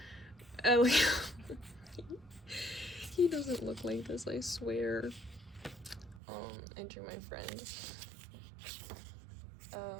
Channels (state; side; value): drops out; left; at 6.2 s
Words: He doesn't look like this, I swear. I drew my friend.